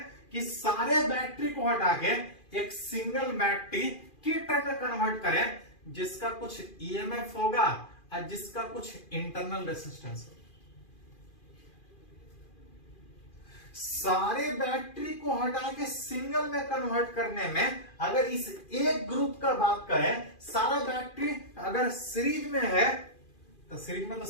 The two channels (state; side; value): late; right; 2.4 ms